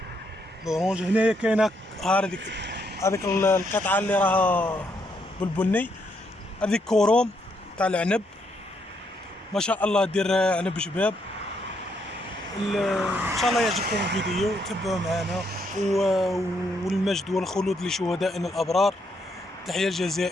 لورونج هنايا كاينة هذيك القطعة اللي راها بالبني، هذيك كوروم تاع العنب، ما شاء الله دير عنب شباب. ان شاء الله يعجبكم الفيديو، تبعوا معنا. والمجد والخلود لشهدائنا الابرار. تحية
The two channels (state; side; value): normal; both; correlation 0.75